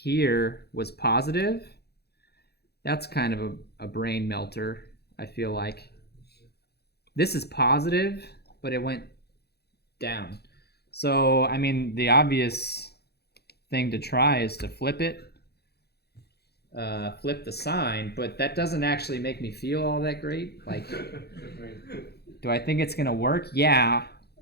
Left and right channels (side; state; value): right; late; 0.47 ms